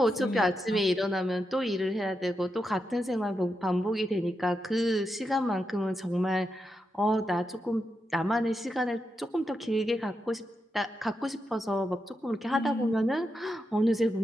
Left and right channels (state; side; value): normal; both; correlation 0.86